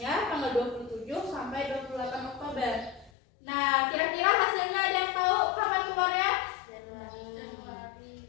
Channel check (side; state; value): right; drops out; at 3.1 s